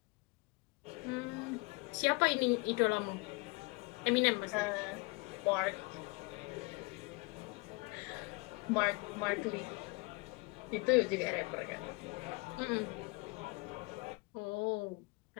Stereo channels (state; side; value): quieter; right; 27.5 dB